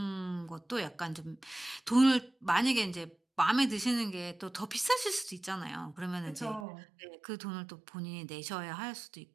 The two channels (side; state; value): left; drops out; at 6.7 s